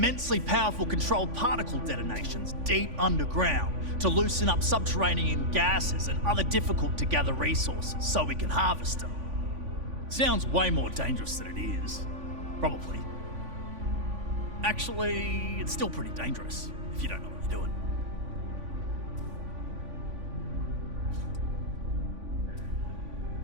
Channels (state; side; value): late; left; 3.5 ms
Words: powerful controlled particle detonations deep underground to loosen up subterranean gases and other difficult to gather resources so we can harvest them. Sounds way more dangerous than it is. Probably. Actually, it's still pretty dangerous if you don't know what you're doing.